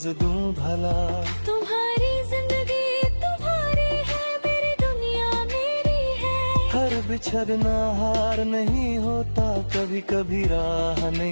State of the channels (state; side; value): inverted; both; correlation -1.00